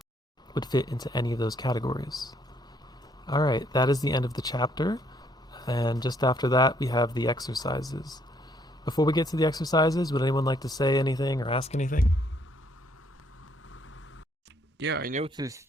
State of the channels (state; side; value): normal; both; correlation 0.68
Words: would fit into any of those categories. Alright, that is the end of the chapter. And just after that, we have the exercises. Before we get to the exercises, would anyone like to say anything or ask anything? Yeah, I noticed